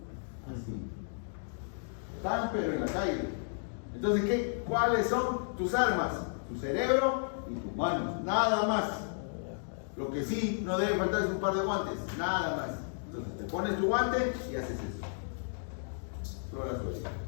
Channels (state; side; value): silent; right; digital silence